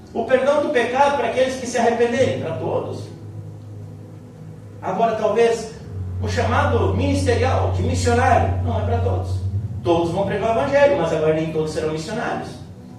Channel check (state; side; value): identical; both; correlation 1.00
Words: O perdão do pecado, para aqueles que se arrependerem, para todos. Agora, talvez o chamado ministerial, de missionário, não é para todos. Todos vão pregar o evangelho, mas agora nem todos serão missionários.